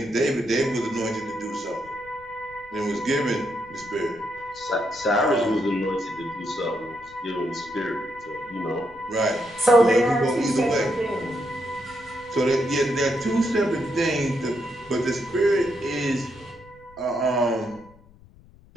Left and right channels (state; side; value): noise; left; rumble, 25 dB below the sound